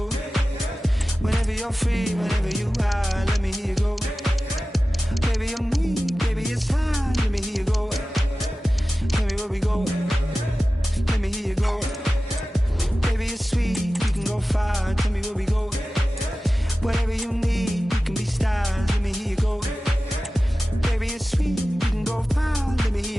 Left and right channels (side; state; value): both; normal; correlation 0.95